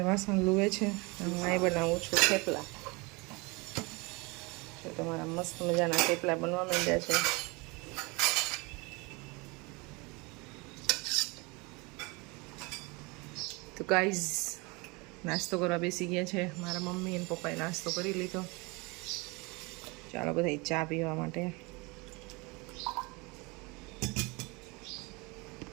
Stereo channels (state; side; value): quieter; left; 26.9 dB